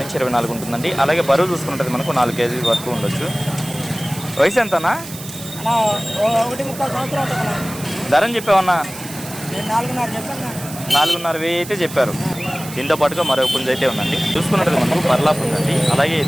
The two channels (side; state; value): right; noise; hiss, 13 dB below the sound